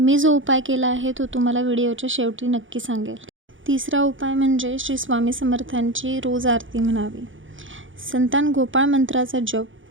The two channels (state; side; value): late; left; 0.57 ms